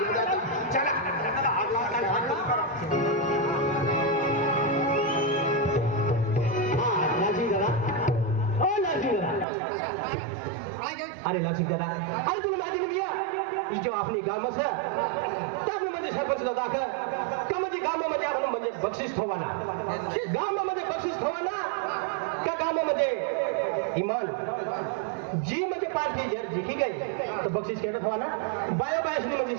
चला अरे लासिक दादा अरे तुला माहिती नाही भैया जो आपली गामच है त्यामुळे म्हणजे सरपंच दादा का म्हणजे गावामध्ये आपण म्हणजे बक्षीस ठेवाना गावामध्ये बक्षीस ठेवाना का गावामध्ये इमान जी म्हणजे पार्टी जर जिंकी गई तो बक्षीस केलं ठेवाना बाया बायासनी म्हणजे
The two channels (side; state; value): left; drops out; at 9.5 s